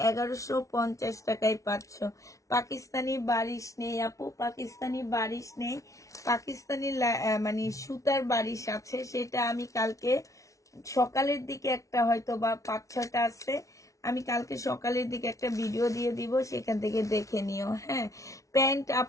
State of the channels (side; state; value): right; late; 0.16 ms